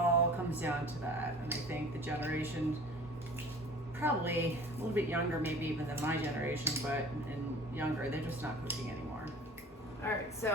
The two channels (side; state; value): both; normal; correlation 0.44